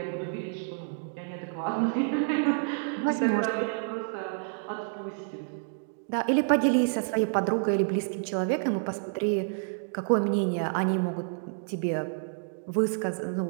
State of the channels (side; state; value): left; silent; digital silence